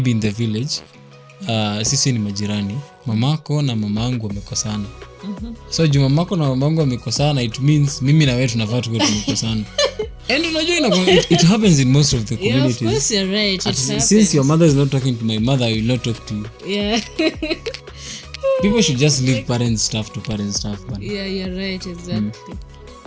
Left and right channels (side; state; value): both; identical; correlation 1.00